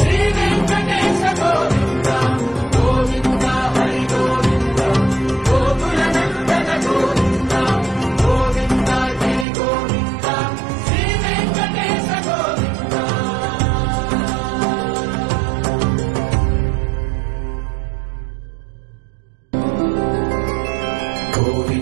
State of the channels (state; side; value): drops out; left; at 9.5 s